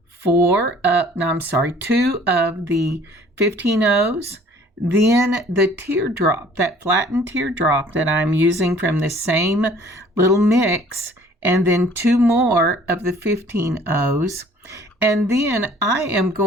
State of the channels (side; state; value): both; normal; correlation 0.54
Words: two of the 15/0s, then the teardrop, that flattened teardrop that I'm using from the same little mix, and then 2 more of the 15/0s. And then I am